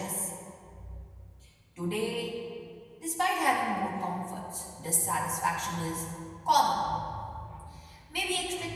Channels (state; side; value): identical; both; correlation 1.00